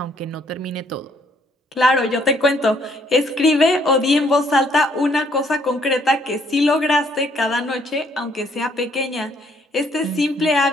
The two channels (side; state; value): both; normal; correlation 0.66